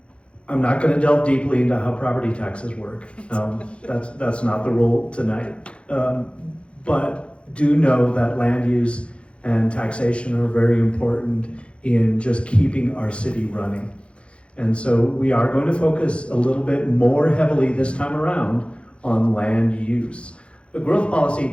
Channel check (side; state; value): right; late; 0.059 ms